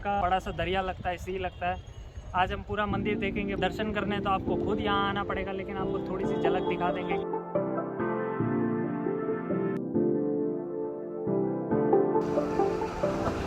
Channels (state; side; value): identical; both; correlation 1.00